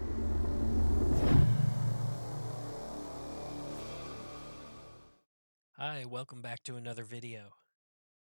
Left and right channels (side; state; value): both; inverted; correlation -1.00